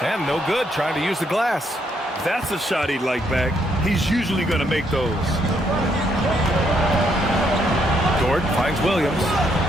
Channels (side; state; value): both; normal; correlation 0.74